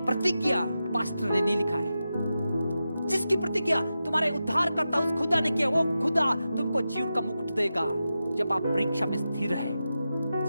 प्रतिज्ञा पास्टर ने नहीं लिखा है, जिसकी प्रतिज्ञा तुम्हारे उद्धारकर्ता उस खुदा ने किया, वो खुदा तुमको जीवन का मुकुट देगा। जब आप परीक्षा में स्थिर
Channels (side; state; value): both; inverted; correlation -0.91